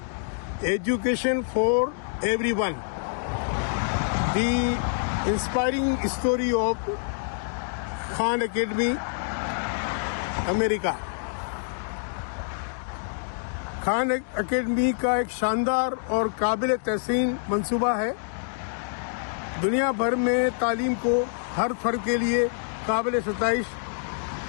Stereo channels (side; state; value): right; silent; digital silence